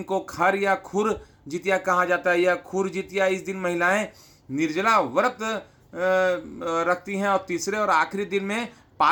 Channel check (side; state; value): both; identical; correlation 1.00